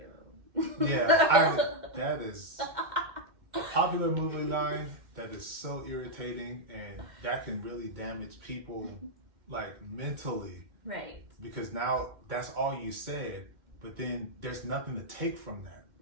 That is a popular movie line that is so irritating, and that can really damage people like mentally. Right. Because now that's all you said, but then there's nothing to take from that.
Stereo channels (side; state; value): left; late; 2.1 ms